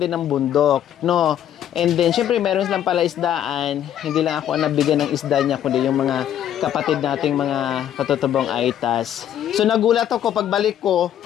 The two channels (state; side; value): quieter; right; 10.6 dB